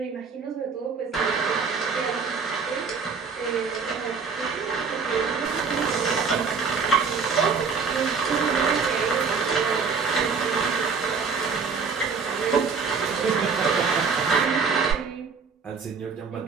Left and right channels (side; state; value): left; quieter; 5.3 dB